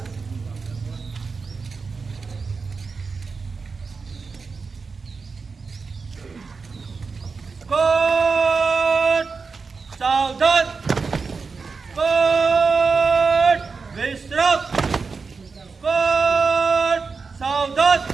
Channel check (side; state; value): left; quieter; 4.7 dB